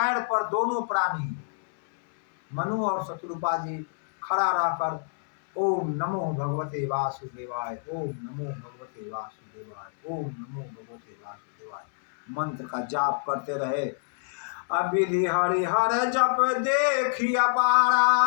पर दोनों प्राणी मनु और शत्रुपा जी खड़ा रहकर ओम नमो भगवते वासुदेवाय, ओम नमो भगवते वासुदेवाय, ओम नमो भगवते वासुदेवाय मंत्र का जाप करते रहे। अविधि हरिहर जप देखिया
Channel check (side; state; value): right; silent; 60 dB below the other